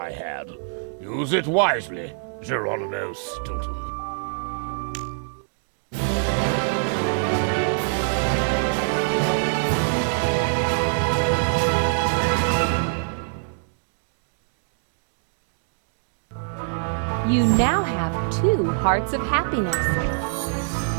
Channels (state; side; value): silent; left; digital silence